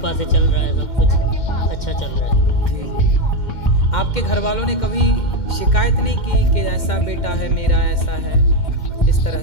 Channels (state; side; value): late; right; 2.1 ms